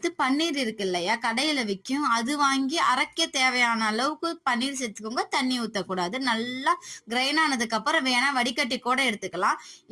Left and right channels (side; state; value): both; identical; correlation 1.00